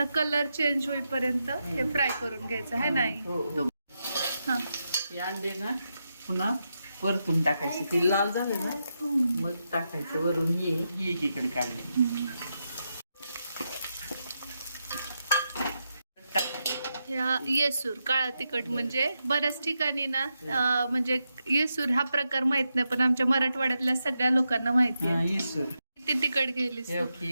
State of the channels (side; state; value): both; inverted; correlation -0.86